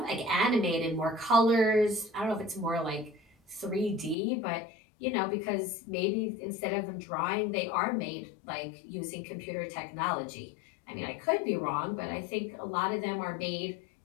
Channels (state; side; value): drops out; right; at 4.2 s